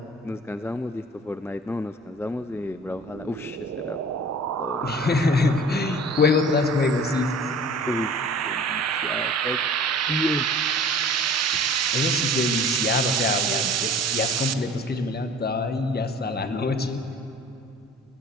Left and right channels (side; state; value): both; normal; correlation 0.45